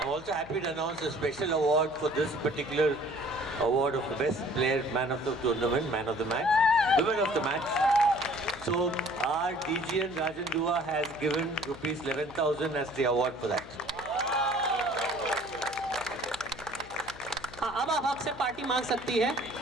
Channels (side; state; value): left; noise; hum, 19 dB below the sound